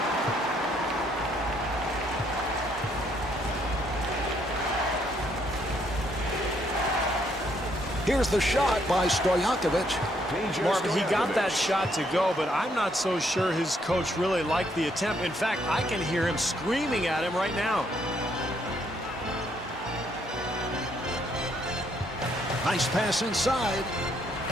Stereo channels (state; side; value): normal; both; correlation 0.71